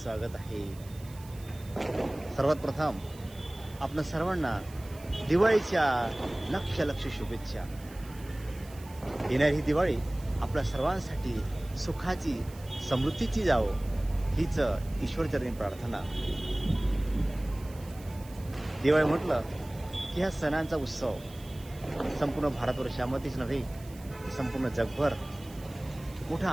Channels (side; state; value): right; noise; hiss, 21 dB below the sound